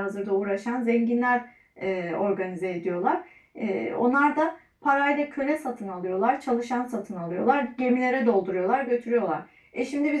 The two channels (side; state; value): both; identical; correlation 1.00